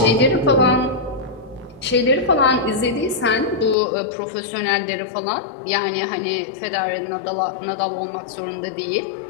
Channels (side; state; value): right; drops out; at 3.8 s